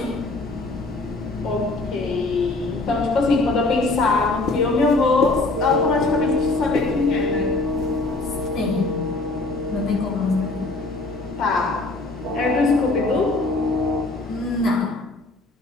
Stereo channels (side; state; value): right; quieter; 3.2 dB